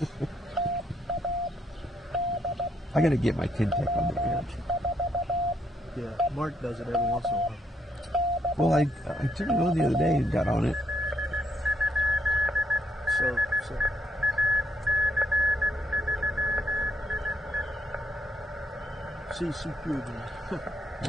I got to get my Tintec on the air. Yeah, Mark does it every once in a while. Well, I turned it on the other day and got on it. So. CC2 again.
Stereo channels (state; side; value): normal; both; correlation 0.74